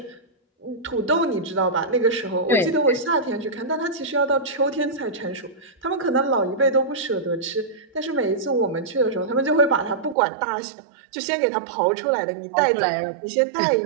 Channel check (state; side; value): drops out; left; at 10.2 s